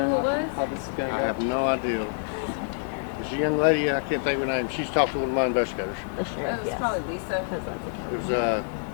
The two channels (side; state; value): right; silent; digital silence